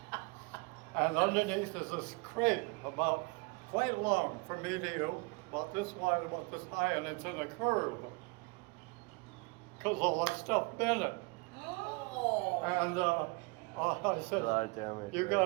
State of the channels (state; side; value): quieter; left; 28.7 dB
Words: and underneath is this crate about quite long from me to you, about this wide, about this high, and it's in a curve. Because all that stuff bent it. Oh. And I said, A lot of damage,